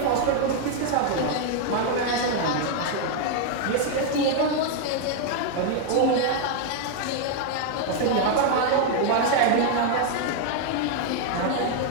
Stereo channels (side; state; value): both; different; correlation 0.00